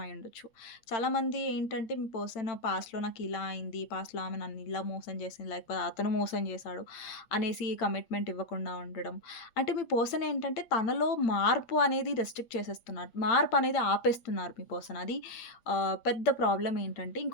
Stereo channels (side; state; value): right; late; 8.8 ms